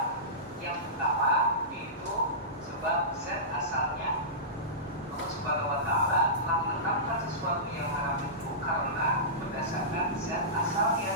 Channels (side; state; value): both; normal; correlation -0.19